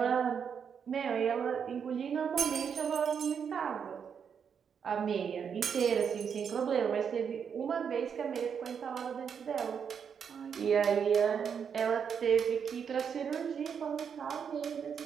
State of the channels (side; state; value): left; quieter; 7.1 dB